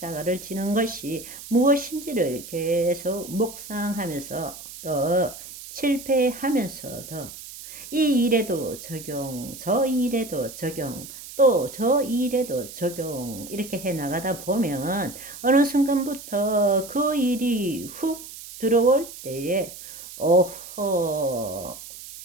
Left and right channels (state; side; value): noise; right; hiss, 14 dB below the sound